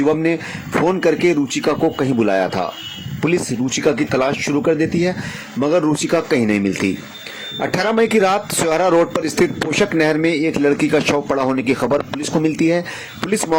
ने फोन करके रुचिका को कहीं बुलाया था। पुलिस रुचिका की तलाश शुरू कर देती है मगर रुचिका कहीं नहीं मिलती। 18 मई की रात सोहरा रोड पर स्थित पोषक नहर में एक लड़की का शव पड़ा होने की खबर पुलिस को मिलती है। पुलिस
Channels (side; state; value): both; identical; correlation 1.00